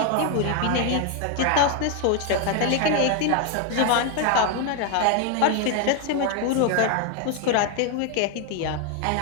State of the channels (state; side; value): different; both; correlation 0.01